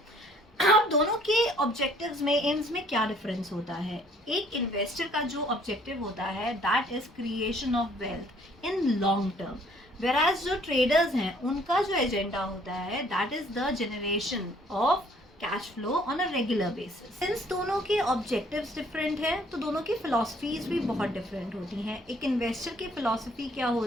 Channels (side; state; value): both; normal; correlation 0.60